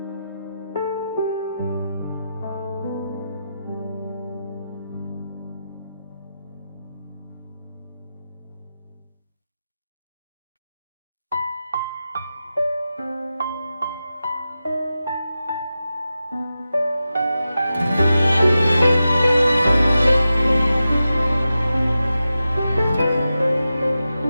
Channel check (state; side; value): inverted; both; correlation -0.92